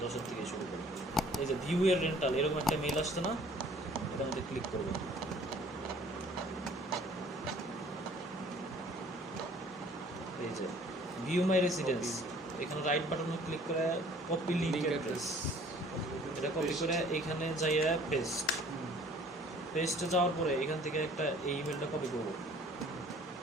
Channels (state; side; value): normal; both; correlation 0.54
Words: 10-এর থেকে শুরু করি। এই যে ভিউ এর রেন্টাল এরকম একটা মেইল আসছে না, এটার মধ্যে ক্লিক করবো। এই যে ভিউ মাই রেসিডেন্স, এখানে রাইট বাটনে ক্লিক করে কপি লিংক অ্যাড্রেস, এটা কপি করে এখানে যাইয়া পেস্টে যাওয়ার পরে এখান থেকে একটা এই ইমেলটা কপি করবো,